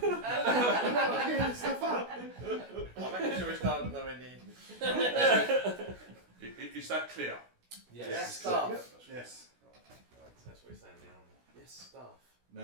making sure it's not nowhere near. Is that clear? Yes. Staff. Yes. That's what he's saying now. Yes, staff.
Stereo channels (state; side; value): late; left; 16 ms